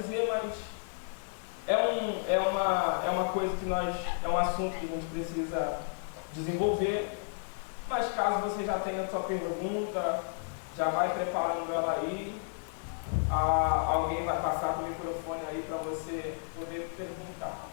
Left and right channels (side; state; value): right; silent; digital silence